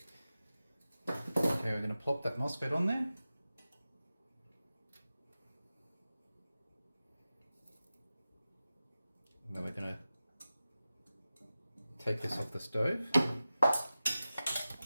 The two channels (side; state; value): both; inverted; correlation -0.94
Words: Okay, we're going to plop that Mosfet on there. And then we're going to take this off the stove